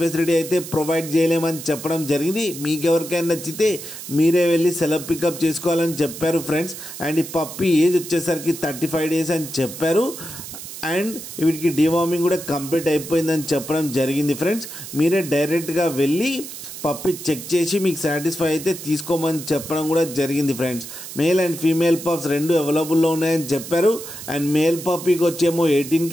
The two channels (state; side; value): noise; right; hiss, 11 dB below the sound